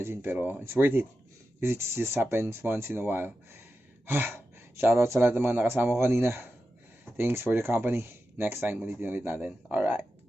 Pero, it's worth it. Because it just happens once in a while. Shoutout sa lahat ng mga nakasama ko kanina. Thanks for the company. Next time, ulitin natin. Alright.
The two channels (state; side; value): normal; both; correlation 0.91